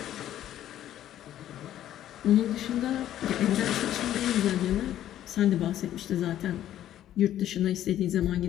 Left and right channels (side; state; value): right; quieter; 12.0 dB